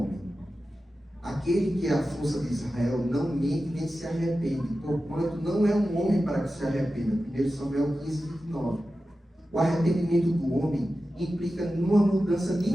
homem. Aquele que é a força de Israel não mente nem se arrepende, porquanto não é um homem para que se arrependa. 1 Samuel 15, 29. O arrependimento do homem implica numa mudança de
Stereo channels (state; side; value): normal; both; correlation 0.93